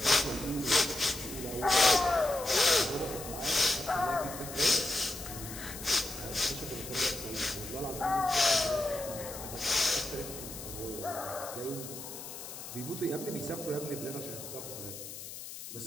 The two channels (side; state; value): left; noise; hiss, 11 dB below the sound